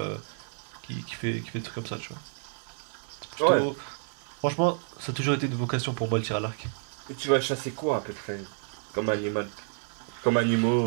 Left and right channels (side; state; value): left; silent; digital silence